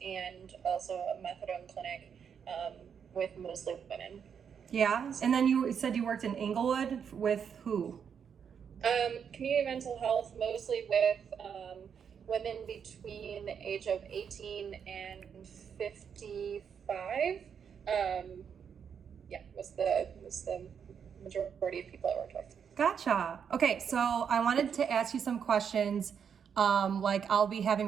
and also a methadone clinic with mostly women. Yeah, and then you said you worked in Inglewood with who? Community mental health, mostly with women between the age of 18 and 55. Was the majority of people I worked with. Gotcha. Okay, so I wanted to ask you some questions. Like I'll be having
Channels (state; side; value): quieter; left; 7.3 dB